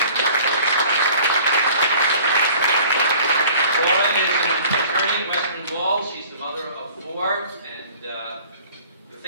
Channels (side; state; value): both; inverted; correlation -0.49